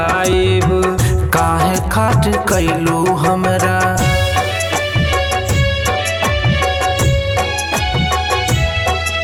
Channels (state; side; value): identical; both; correlation 1.00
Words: काहे खाट कैलू हमरा